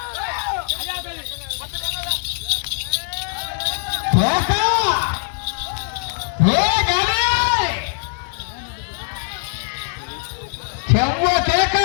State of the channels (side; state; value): right; silent; digital silence